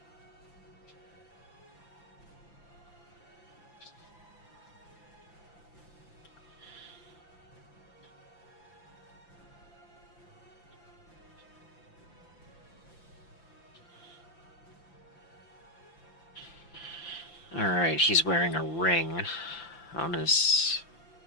Alright, he's wearing a ring on his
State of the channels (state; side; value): late; right; 5.9 ms